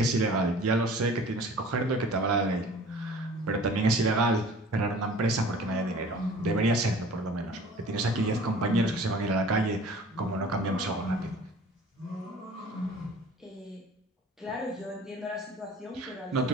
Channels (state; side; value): normal; both; correlation 0.46